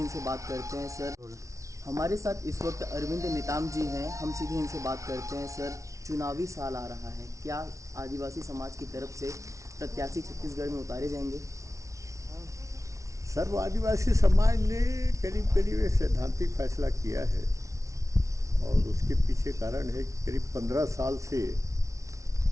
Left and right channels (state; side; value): late; left; 0.15 ms